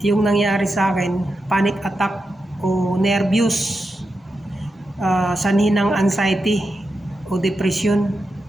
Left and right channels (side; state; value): both; normal; correlation 0.88